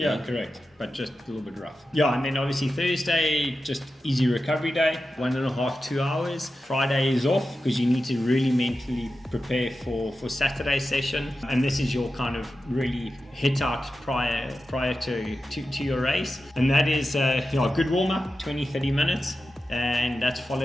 correct. But just a little bit rough. Yeah, and then obviously Thursday, just easy recovery day, 1.5, 2 hours. Friday is off because you need to really mentally prepare for Saturday's session. And this is your kind of really hit out prior to your race. And that is a good warm-up, 20-30 minutes. And that's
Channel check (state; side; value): normal; both; correlation 0.91